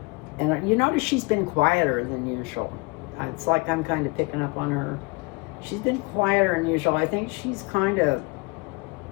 And you notice she's been quieter than usual. It's like I'm kind of picking up on her. She's been quieter than usual. I think she's kind of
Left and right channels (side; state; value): right; quieter; 27.8 dB